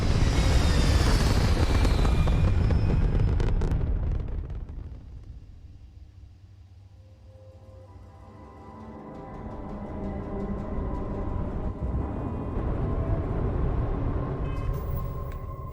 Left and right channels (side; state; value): both; identical; correlation 1.00